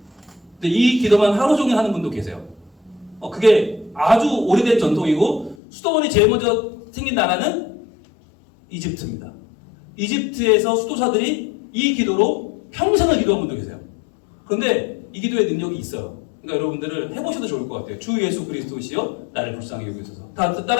근데 이 기도만 하루 종일 하는 분도 계세요. 그게 아주 오래된 전통이고 수도원이 제일 먼저 생긴 나라는 이집트입니다. 이집트에서 수도사들이 이 기도로 평생을 기도한 분도 계세요. 그런데 이 기도의 능력이 있어요. 그러니까 여러분들은 해보셔도 좋을 것 같아요. 주 예수 그리스도시여 나를 불쌍히 여기소서. 다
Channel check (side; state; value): right; drops out; at 5.6 s